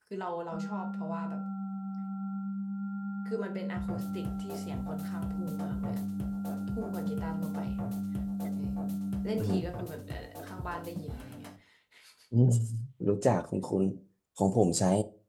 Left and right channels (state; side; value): identical; both; correlation 1.00